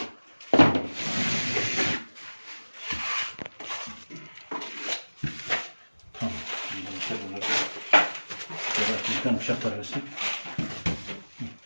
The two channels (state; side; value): inverted; both; correlation -1.00